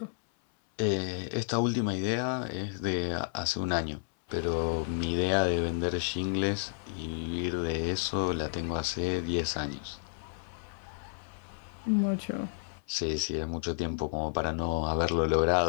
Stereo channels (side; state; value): right; silent; 57 dB below the other